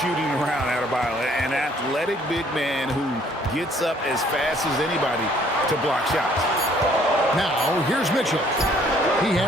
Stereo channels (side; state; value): both; normal; correlation 0.61